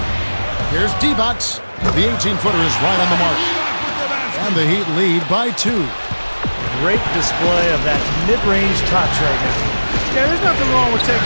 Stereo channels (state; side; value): inverted; both; correlation -1.00